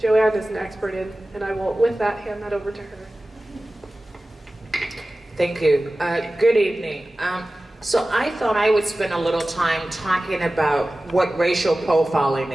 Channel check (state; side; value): normal; both; correlation 0.96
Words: is an expert in, and I will, with that, hand that over to her. Thank you. Good evening. So I thought I would spend a little time talking about what racial profiling